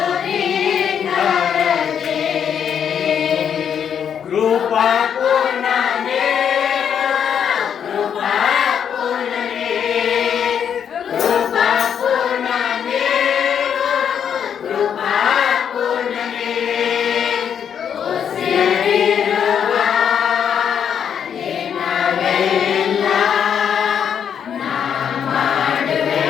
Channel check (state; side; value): quieter; right; 8.2 dB